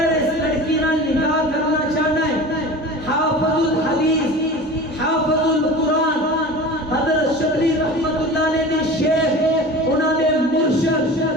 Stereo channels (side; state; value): both; normal; correlation 0.35